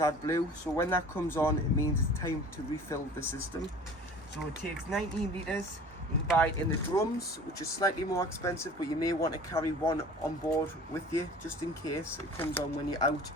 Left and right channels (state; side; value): normal; both; correlation 0.44